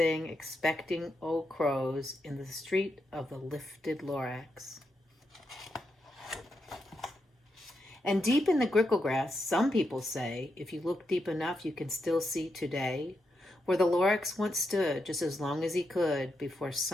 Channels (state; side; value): normal; both; correlation 0.84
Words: expecting old crows in the street of the lifted Lorax. And deep in the grickle grass, some people say, if you look deep enough, you can still see today, where the Lorax once stood just as long as he could before